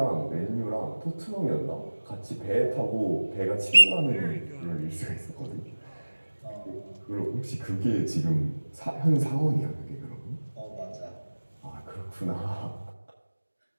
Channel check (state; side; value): inverted; both; correlation -1.00